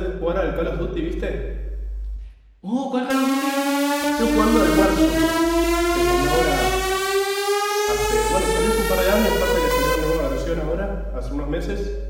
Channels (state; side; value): identical; both; correlation 1.00